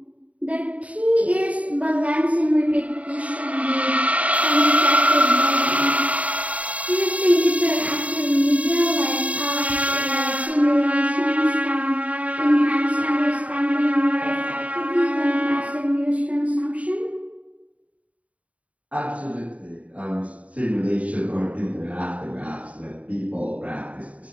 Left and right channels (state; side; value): late; left; 0.067 ms